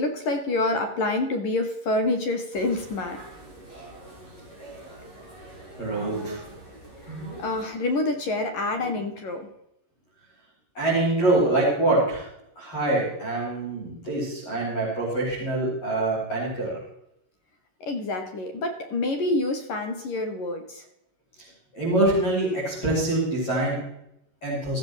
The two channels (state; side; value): late; right; 11 ms